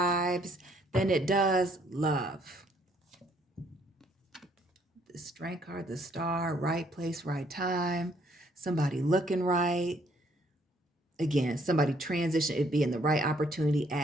than it does love. The Strength card, the Star, right place, right time, somebody looking right. Again, somebody transition, it being the right opportunity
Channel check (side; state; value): both; normal; correlation 0.66